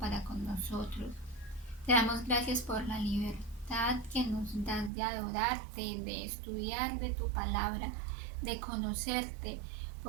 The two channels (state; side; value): drops out; left; at 4.9 s